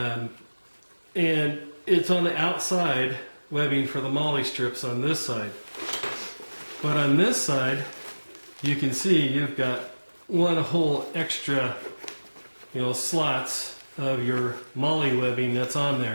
it's on the outside webbing for the molly strips on this side. But on this side, you can see you've got one whole extra slots of your molly webbing that's on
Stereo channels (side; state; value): both; inverted; correlation -1.00